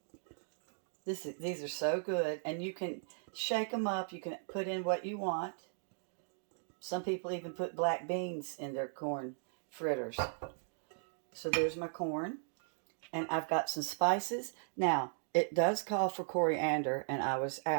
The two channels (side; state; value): left; silent; digital silence